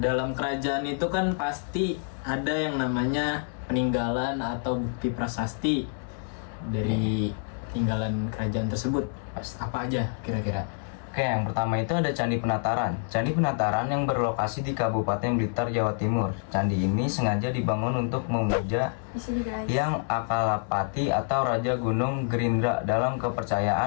kerajaan itu kan pasti ada yang namanya peninggalan atau bukti prasasti dari tinggalan kerajaan tersebut. Apa aja kira-kira? Oke, yang pertama itu ada Candi Penataran. Candi Penataran yang berlokasi di Kabupaten Blitar, Jawa Timur. Candi ini sengaja dibangun untuk memuja yang Akalapati atau Raja Gunung Gerindra dalam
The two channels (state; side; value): silent; right; 58 dB below the other